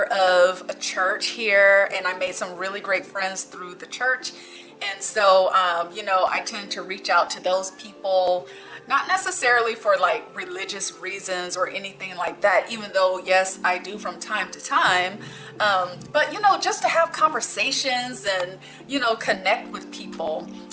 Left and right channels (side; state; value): both; identical; correlation 1.00